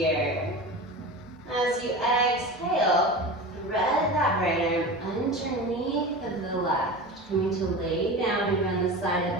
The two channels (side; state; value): both; normal; correlation 0.30